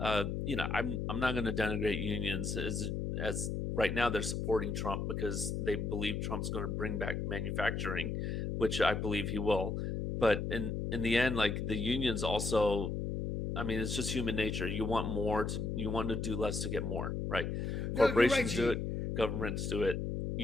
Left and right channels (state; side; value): noise; left; hum, 2 dB below the sound